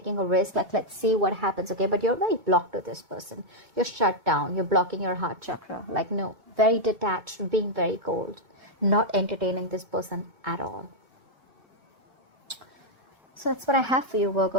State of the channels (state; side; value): late; left; 2.2 ms